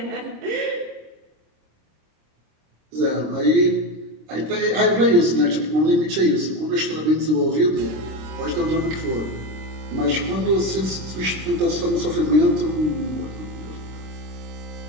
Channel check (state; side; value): late; left; 26 ms